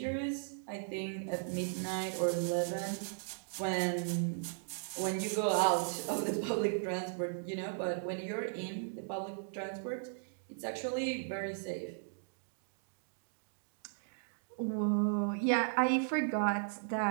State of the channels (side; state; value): left; silent; digital silence